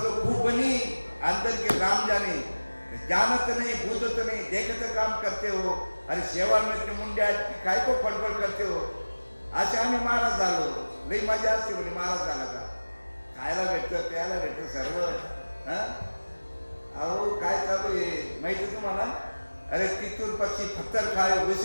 खूप बनी अंदर के राम जाने, जानत नाही भूतत नाही देखत काम करते हो. अरे शेवाळ में मुंड्या काय को फडफड करते हो. असे आम्ही महाराज झालो, लई मजा असते म्हणजे महाराज झाला का, खायला भेटतं प्यायला भेटतं सर्व. अहो काय चालू आहे माहिती तुम्हाला. अरे तिथून पक्षी पत्थर खाए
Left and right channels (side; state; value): both; inverted; correlation -1.00